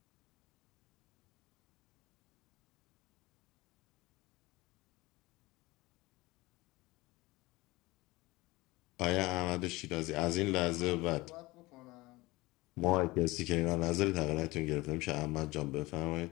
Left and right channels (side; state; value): right; quieter; 21.1 dB